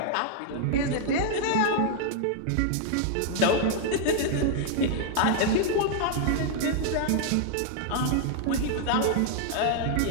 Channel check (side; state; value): both; different; correlation 0.00